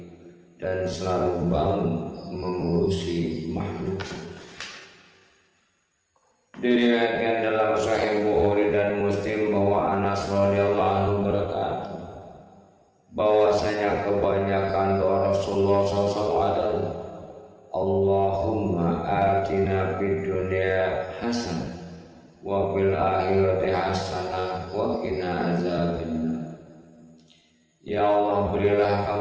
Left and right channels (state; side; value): identical; both; correlation 1.00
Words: dan selalu bangun mengurusi makhluk. Diriwayatkan dalam Sahih Bukhari dan Muslim bahwa Anas radhiyallahu anhu berkata bahwasanya kebanyakan doa Rasulullah SAW adalah Allahumma atina fid dunya hasanah wa fil akhirati hasanah wa qina azabannar. Ya Allah, berilah